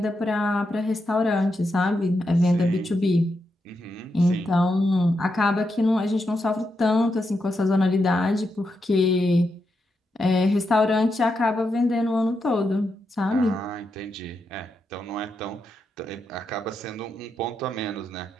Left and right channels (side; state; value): both; normal; correlation 0.84